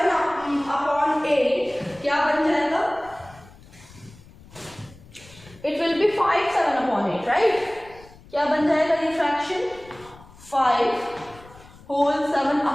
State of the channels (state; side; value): noise; left; rumble, 23 dB below the sound